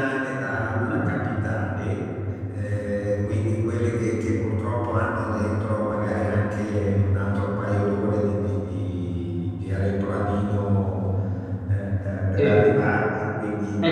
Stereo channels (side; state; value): both; identical; correlation 1.00